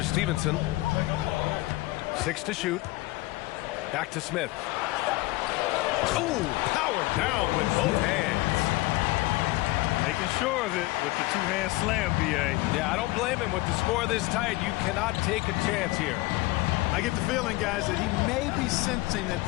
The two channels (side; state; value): right; quieter; 20.5 dB